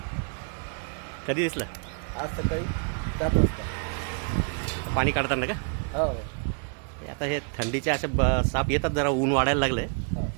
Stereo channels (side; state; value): left; quieter; 39.7 dB